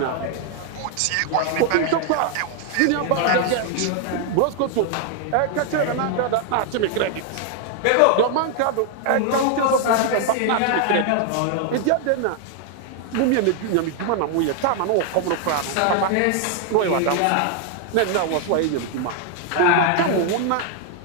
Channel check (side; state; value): both; different; correlation 0.00